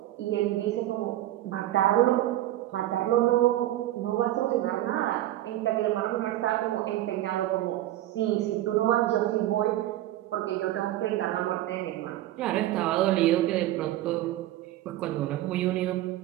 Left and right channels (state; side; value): quieter; left; 14.5 dB